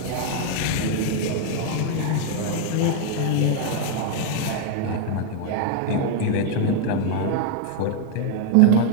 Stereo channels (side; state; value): both; different; correlation 0.00